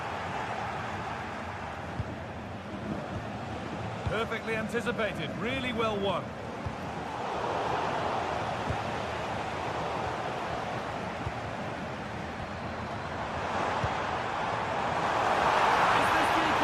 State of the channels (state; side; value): identical; both; correlation 1.00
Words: Perfectly anticipated, really well won. Is this the